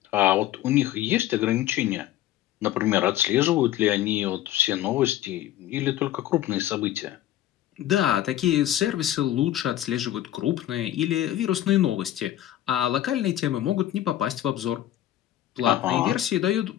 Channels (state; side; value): quieter; right; 13.0 dB